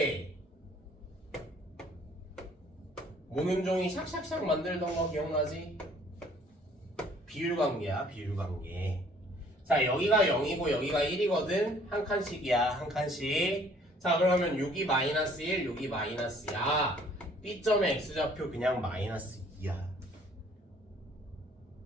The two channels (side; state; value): both; normal; correlation 0.58